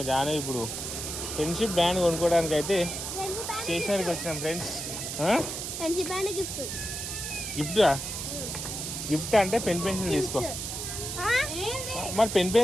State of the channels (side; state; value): right; noise; hiss, 5 dB below the sound